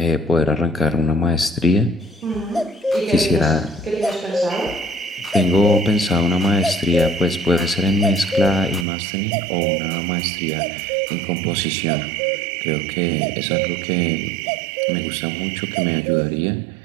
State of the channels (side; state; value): left; drops out; at 8.8 s